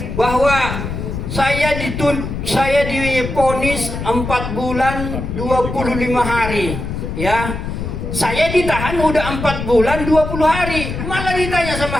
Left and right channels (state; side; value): noise; left; rumble, 5 dB below the sound